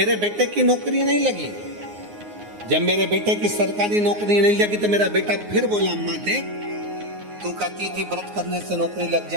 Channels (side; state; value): left; late; 9.6 ms